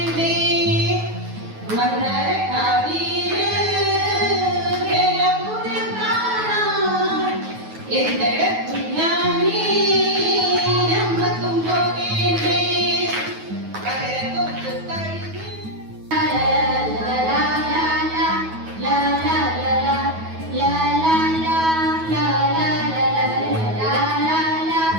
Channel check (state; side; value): late; left; 9.3 ms